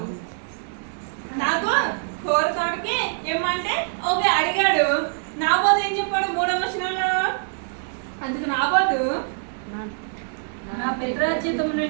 నాకు కూర తోటకి ఏమంటే ఓకే అడిగాడు. నాబోతు ఏం చెప్పాడు 3వ వచనంలో? అందుకు నాబోతు నా పిత్రార్జితమును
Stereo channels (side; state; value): left; silent; digital silence